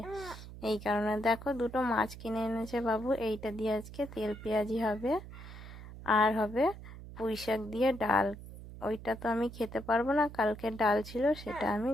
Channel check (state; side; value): noise; right; hum, 14 dB below the sound